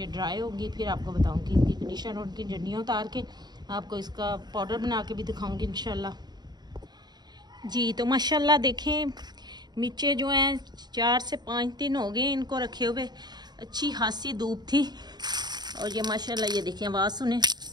ड्राई होंगी फिर आपको बताऊंगी इनकी कंडीशन, और उनकी डंडियाँ उतार के आपको इसका पाउडर बना के भी दिखाऊंगी इंशाल्लाह जी। तो माशाल्लाह देखें, मिर्चें जो हैं 4 से 5 दिन हो गए इनको रखे हुए, अच्छी खासी धूप थी, और ये माशाल्लाह ये देखें, आवाज़ सुने।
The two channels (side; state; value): left; late; 0.20 ms